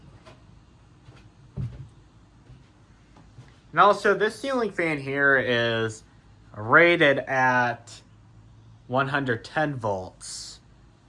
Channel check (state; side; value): identical; both; correlation 1.00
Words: And also, this ceiling fan here is rated at 110 volts.